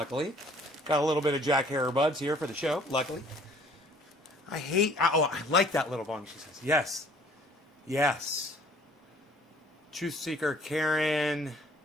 Got a little bit of Jack Herer buds here for the show, luckily. I like that little bong, she says. Yes. Yes. Truth Seeker, Karen,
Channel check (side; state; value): both; normal; correlation 0.56